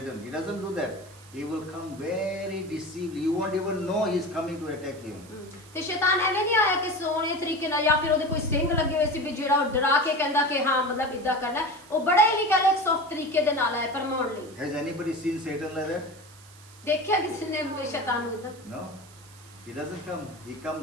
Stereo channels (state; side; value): noise; right; hiss, 23 dB below the sound